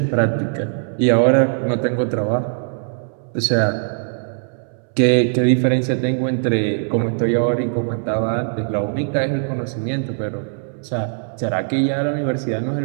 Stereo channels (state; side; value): silent; left; 65 dB below the other